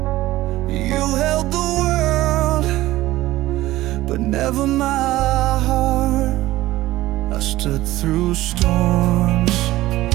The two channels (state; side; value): quieter; left; 16.6 dB